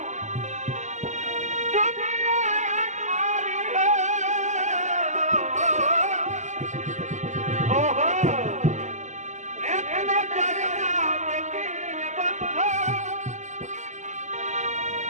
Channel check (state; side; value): late; left; 0.34 ms